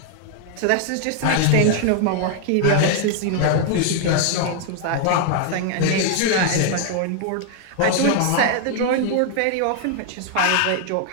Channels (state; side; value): different; both; correlation 0.00